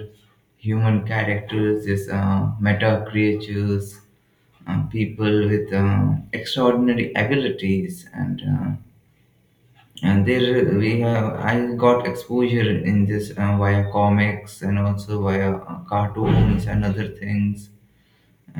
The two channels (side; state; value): both; identical; correlation 1.00